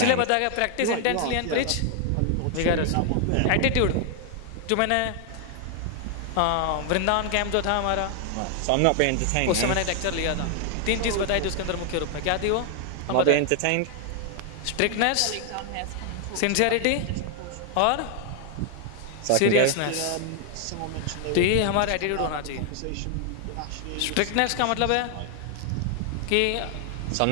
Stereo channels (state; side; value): different; both; correlation 0.00